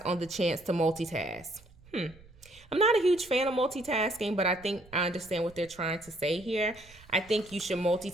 the chance to multitask. I'm not a huge fan of multitasking, but I think I understand what they're trying to say here. I think you should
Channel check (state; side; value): noise; right; rumble, 24 dB below the sound